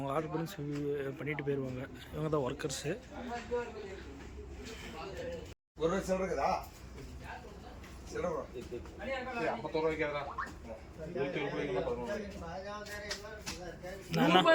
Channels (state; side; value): identical; both; correlation 1.00